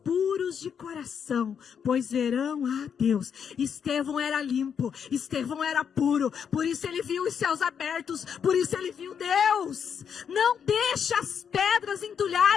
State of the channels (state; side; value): quieter; right; 7.4 dB